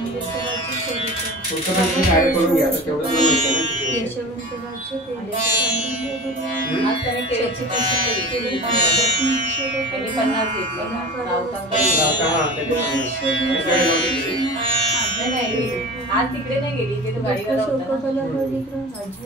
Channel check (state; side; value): normal; both; correlation 0.34